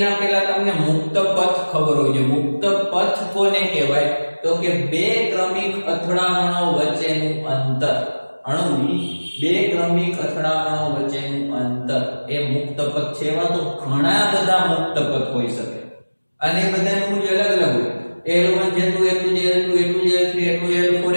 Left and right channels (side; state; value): both; inverted; correlation -1.00